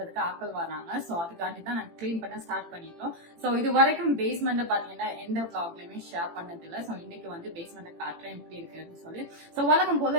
ஆட்கள் வராங்க. சோ அதுக்காண்டி தான் நாங்க கிளீன் பண்ண ஸ்டார்ட் பண்ணிட்டோம். சோ இது வரைக்கும் பேஸ்மெண்ட் பாத்தீங்கன்னா எந்த vlogலயுமே ஷேர் பண்ணது இல்ல. சோ இன்னைக்கு வந்து பேஸ்மெண்ட் காட்டுறேன் எப்படி இருக்குன்னு சொல்லி. சோ வழக்கம்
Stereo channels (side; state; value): left; late; 18 ms